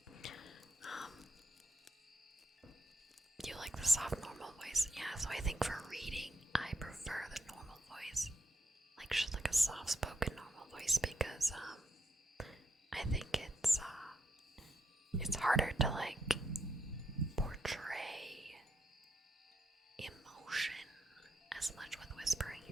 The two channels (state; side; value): normal; both; correlation 0.81